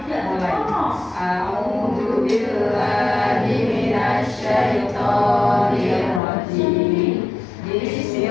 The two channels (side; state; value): right; drops out; at 6.2 s